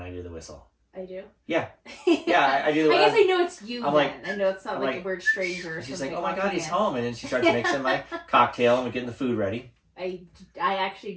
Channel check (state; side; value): identical; both; correlation 1.00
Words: I do the whistle. I do? Yeah. Yeah, I do. I guess I know it's you I'm then. like, I know it's not like a weird stranger or she's something. like, oh my god, he's home. And then she starts mixing my cocktail and we're getting the food ready. I actually